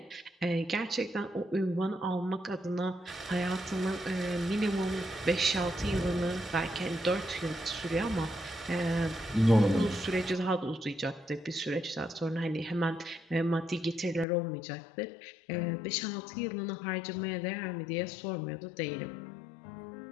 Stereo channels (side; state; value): right; drops out; at 14.2 s